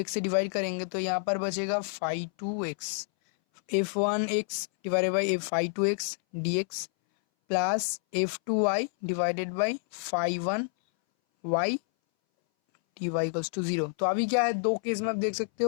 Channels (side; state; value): right; silent; 59 dB below the other